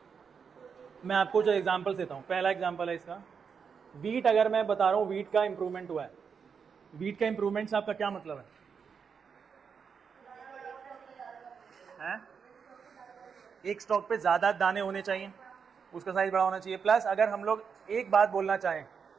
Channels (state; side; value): quieter; left; 6.3 dB